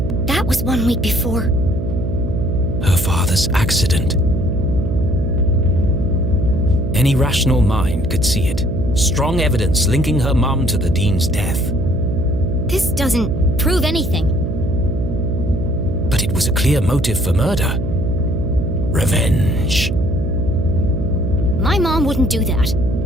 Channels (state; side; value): noise; right; hum, 4 dB below the sound